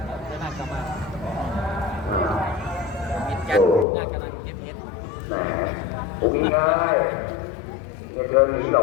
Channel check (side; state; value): right; drops out; at 3.9 s